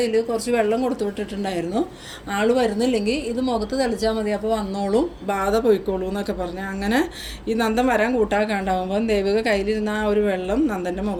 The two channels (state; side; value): identical; both; correlation 1.00